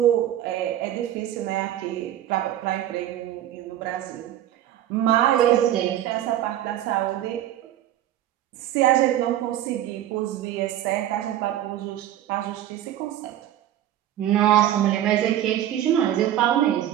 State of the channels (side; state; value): left; quieter; 12.2 dB